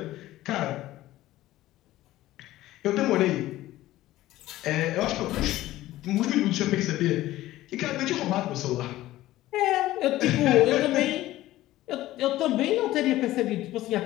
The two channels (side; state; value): right; quieter; 15.7 dB